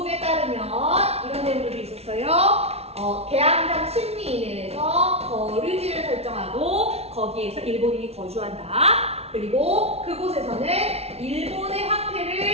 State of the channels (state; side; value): late; left; 0.30 ms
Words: 따르면 이런 내용들도 있었어요. 개항장 심리인에서 거류지를 설정하고 거기에서 일본인이 거주한다. 그리고 그곳에서는 일본의